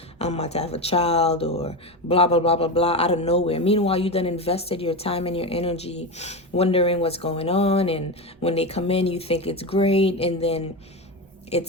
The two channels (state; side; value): normal; both; correlation 0.17